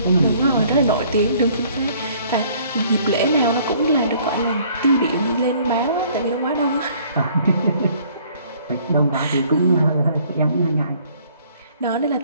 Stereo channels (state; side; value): inverted; both; correlation -0.58